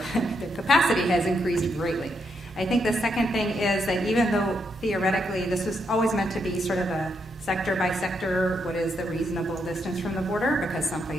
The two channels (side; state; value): both; normal; correlation 0.79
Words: capacity has increased greatly. I think the second thing is that even though theoretically this was always meant to be sort of a sector by sector, what is the reasonable distance from the border, because some